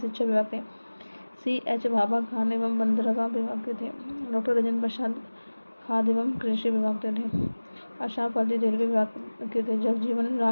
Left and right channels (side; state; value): both; inverted; correlation -1.00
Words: विभाग थे CH भाभा खान एवं बंदरगाह विभाग के थे डॉक्टर राजेंद्र प्रसाद, खाद्य एवं कृषि विभाग के थे अशराफ अली, रेलवे विभाग के थे जगजीवन